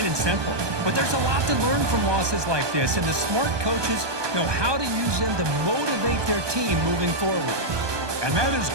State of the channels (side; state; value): left; late; 1.2 ms